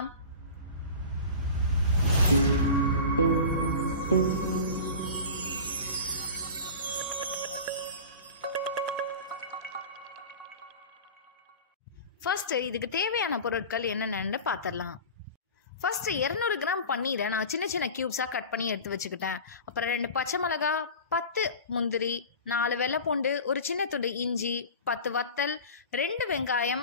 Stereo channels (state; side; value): inverted; both; correlation -0.34